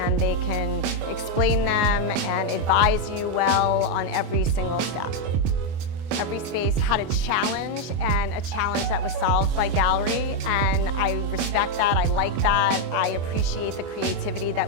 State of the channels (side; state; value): left; late; 24 ms